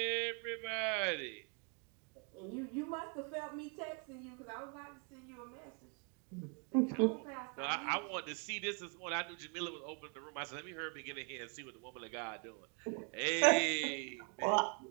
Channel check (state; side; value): quieter; left; 38.7 dB